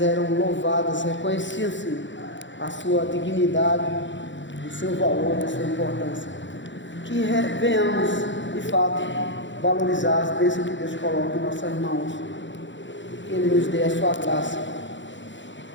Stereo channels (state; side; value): late; right; 0.54 ms